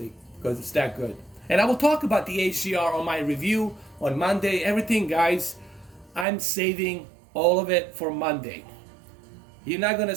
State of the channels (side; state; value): left; drops out; at 6.2 s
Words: because it's that good. And I will talk about the HDR on my review on Monday. Everything, guys, I'm saving all of it for Monday. You're not gonna